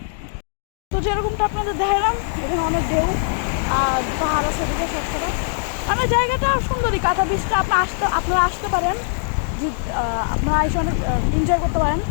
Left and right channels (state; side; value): silent; right; digital silence